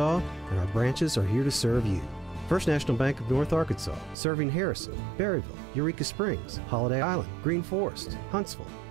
and our branches are here to serve you. First National Bank of North Arkansas, serving Harrison, Berryville, Eureka Springs, Holiday Island, Green Forest, Huntsville,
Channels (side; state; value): left; drops out; at 4.2 s